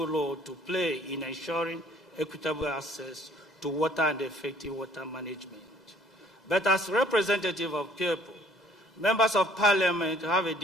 role to play in ensuring equitable access to water and effective water management. But as representative of people, members of parliament have a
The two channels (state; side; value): normal; both; correlation 0.57